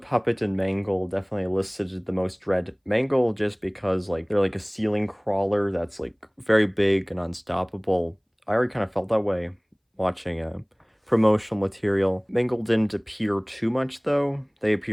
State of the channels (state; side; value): identical; both; correlation 1.00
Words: and Mangle definitely elicited the most dread. Mangle just because, like, they're like a ceiling crawler that's, like, very big and unstoppable. I already kind of felt that way watching promotional material. Mangle didn't appear too much, though. They